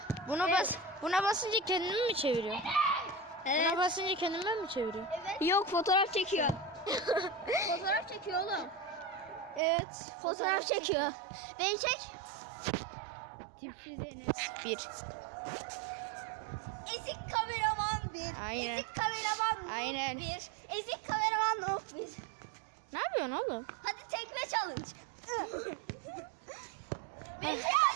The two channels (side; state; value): left; drops out; at 9.6 s